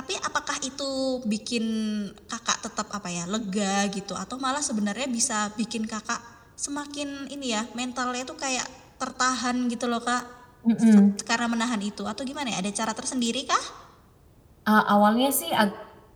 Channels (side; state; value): both; identical; correlation 1.00